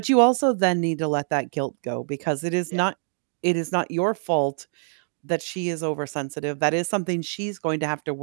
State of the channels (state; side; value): silent; left; digital silence